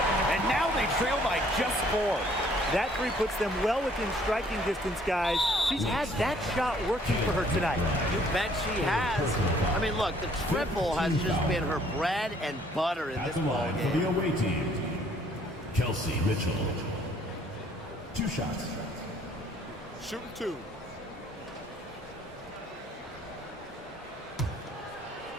And now they trail by just 4. That 3 puts them well within striking distance, guys. She's had that shot working for her tonight. You bet she has. I mean, look, the triple has just been her bread and butter in At this the ball line for the game. away team, Kelsey Mitchell. 2 shots. Shooting 2.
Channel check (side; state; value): both; normal; correlation 0.62